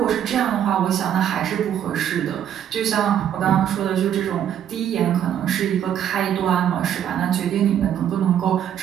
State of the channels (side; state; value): left; quieter; 9.8 dB